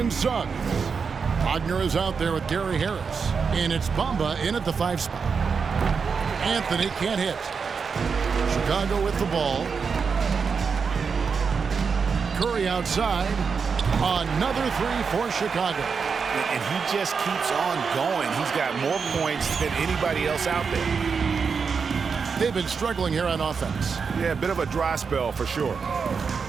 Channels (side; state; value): left; quieter; 5.6 dB